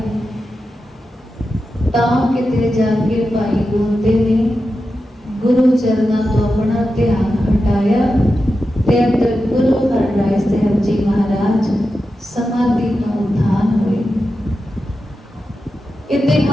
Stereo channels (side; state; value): both; normal; correlation 0.91